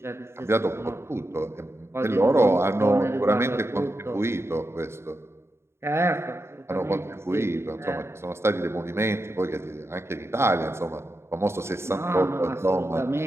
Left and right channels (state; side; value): late; left; 0.12 ms